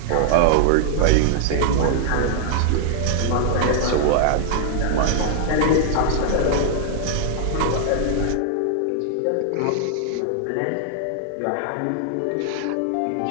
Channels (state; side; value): different; both; correlation 0.00